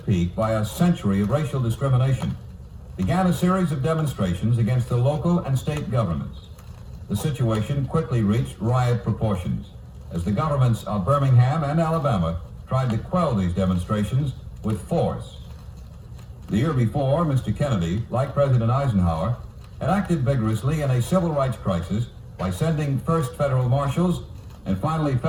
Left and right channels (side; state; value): both; identical; correlation 1.00